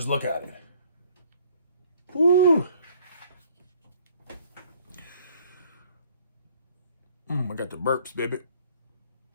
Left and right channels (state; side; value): inverted; both; correlation -0.59